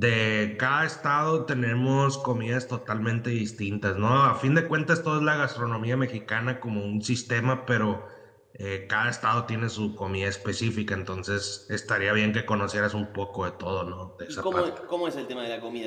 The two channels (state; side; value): identical; both; correlation 1.00